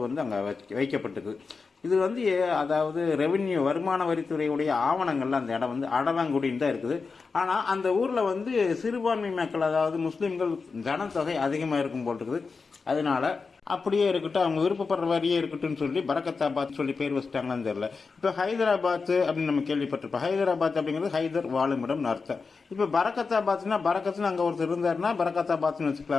அங்கே வைக்கப்பட்டிருக்கு. இது அதாவது ரெவென்யூ வருமான வரித்துறையுடைய ஆவணங்கள்ல அந்த இடம் அடவங்குடின்னு தான் இருக்குது. ஆனால் அந்த ஊரில் சிறுபான்மை மக்கள், அதாவது முஸ்லீம்கள் ஜனத்தொகை அதிகமாக இருக்கும் போல் இருக்குது. அதனால அப்படியே இருக்கட்டும், அவங்க விருப்பப்படுற வரியே இருக்கட்டும் சொல்லி பரக்கத்தாபாத் சொல்லி பேர் வச்சுட்டாங்களான்னு தெரியல. இப்போ ஹைதராபாத் அப்படின்னு நம்ம கேள்விப்பட்டிருப்போம். ஹைதராபாத் அப்படிங்கிறது ஹைதர் வாழுமிடம் அர்த்தம். இப்போ பரக்கத்தாபாத்னா பரக்கத்துன்னு அங்கே ஒருத்தர் இருந்தாருன்னா பரக்கத்தாபாத்னு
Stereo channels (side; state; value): right; quieter; 4.7 dB